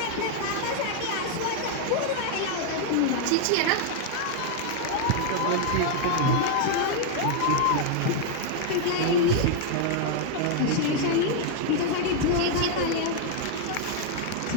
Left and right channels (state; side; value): different; both; correlation 0.00